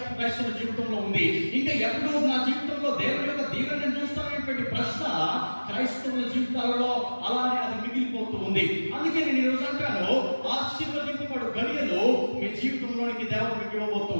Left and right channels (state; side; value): inverted; both; correlation -1.00